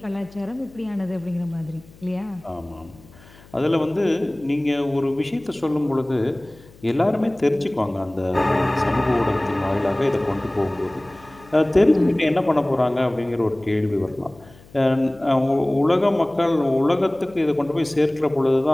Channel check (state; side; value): noise; left; hum, 24 dB below the sound